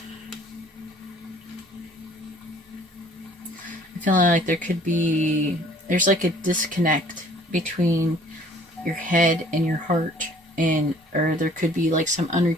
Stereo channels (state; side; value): normal; both; correlation 0.54